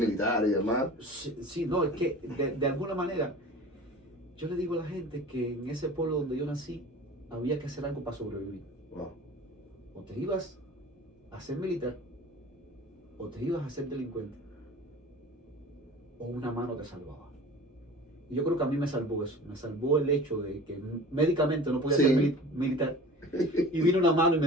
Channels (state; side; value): normal; both; correlation 0.40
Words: y demás. Sí, no, es que de alguna manera, yo le digo a la gente que en ese pueblo donde yo nací, había que hacer algo para sobrevivir. Wow. O te ibas a ser militar, o te ibas a ser delincuente, o una mano te salvaba. Y yo creo que a mí me salvó eso, me salvó el hecho de que médicamente no podía ser militar. Y vino una mano y